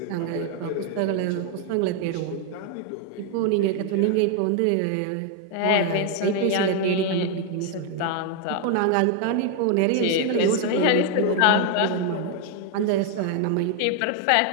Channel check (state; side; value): different; both; correlation 0.01